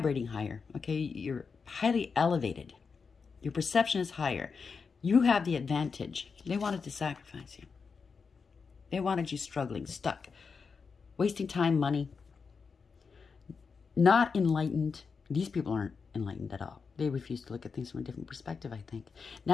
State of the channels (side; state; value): right; quieter; 5.3 dB